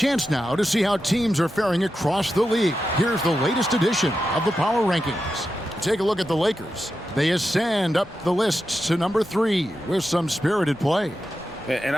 now to see how teams are faring across the league. Here's the latest edition of the Power Rankings. Take a look at the Lakers. They ascend up the list to number 3 with some spirited play. And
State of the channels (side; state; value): both; normal; correlation 0.89